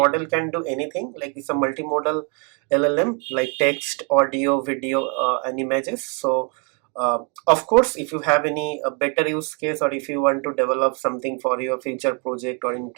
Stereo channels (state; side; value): quieter; left; 36.2 dB